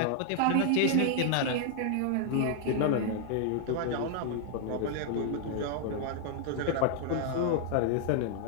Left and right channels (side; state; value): both; different; correlation 0.00